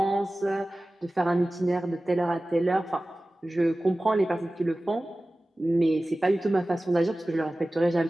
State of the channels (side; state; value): both; normal; correlation 0.97